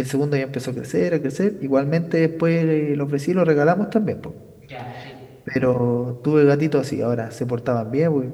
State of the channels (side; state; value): both; identical; correlation 1.00